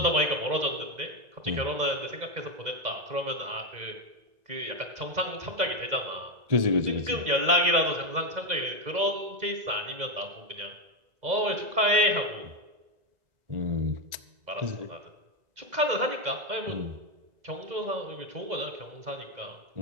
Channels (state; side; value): late; left; 2.0 ms